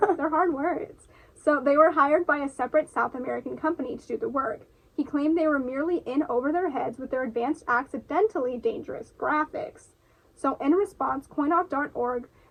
They're hard words. So they were hired by a separate South American company to do the work. He claimed they were merely in over their heads with their advanced accidentally dangerous graphics. So in response, coinoff.org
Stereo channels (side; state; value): both; identical; correlation 1.00